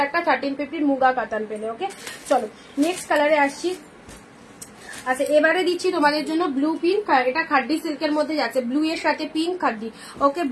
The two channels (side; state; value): both; identical; correlation 1.00